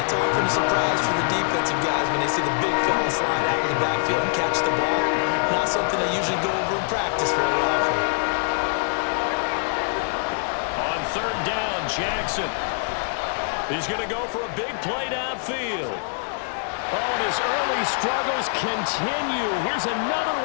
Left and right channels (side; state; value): right; silent; digital silence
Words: often a surprise for the defensive guys when they see the big fella slide out of the backfield and catch the ball. Not something they usually go over in practice very often. On 3rd down, Jackson. He's going to go for a big play downfield. Oh, and his early struggles continue. Here's another